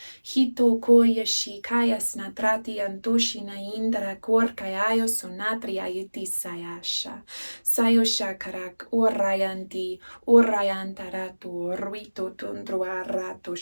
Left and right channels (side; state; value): both; inverted; correlation -1.00